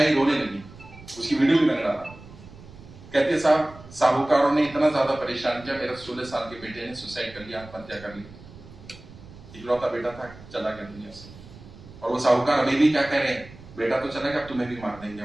रोने लगी, उसकी वीडियो भी मैंने डाला। कहते साहब साहूकारों ने इतना ज्यादा परेशान किया, मेरा 16 साल के बेटे ने सुसाइड कर लिया, आत्महत्या कर ली। इकलौता बेटा था, चला गया दुनिया से। और वो साहूकार अभी भी क्या कह रहे हैं, बेटा तो चला गया, अब तुम्हें भी मार देंगे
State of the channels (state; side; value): noise; right; rumble, 19 dB below the sound